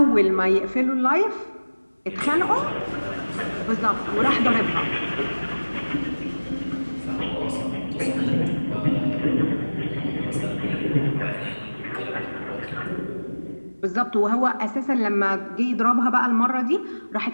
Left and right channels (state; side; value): inverted; both; correlation -1.00